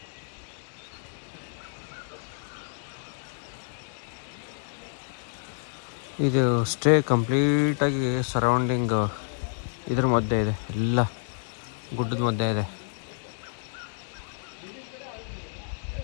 ಇದು ಸ್ಟೇ ಕಂಪ್ಲೀಟಾಗಿ ಸರೌಂಡಿಂಗ್ ಇದ್ರ ಮಧ್ಯೆ ಇದೆ, ಎಲ್ಲ ಗುಡ್ಡದ ಮಧ್ಯೆ ಇದೆ.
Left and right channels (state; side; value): silent; right; digital silence